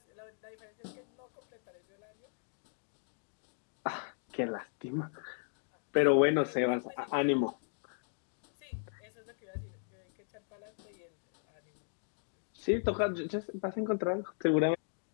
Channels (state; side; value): silent; right; digital silence